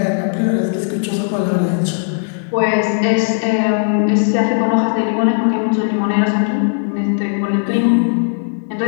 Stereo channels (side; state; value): right; silent; 68 dB below the other